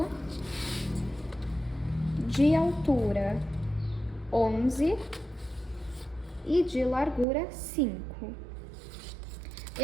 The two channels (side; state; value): left; drops out; at 7.2 s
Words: De altura, 11. E de largura, 5.